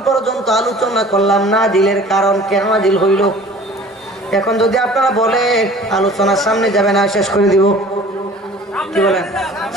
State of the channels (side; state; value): both; normal; correlation 0.47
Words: পর্যন্ত আলোচনা করলাম নাজিলের কারণ, কেন নাজিল হইল। এখন যদি আপনারা বলেন আলোচনার সামনে যাবে না, শেষ করে দিব। কি বলেন,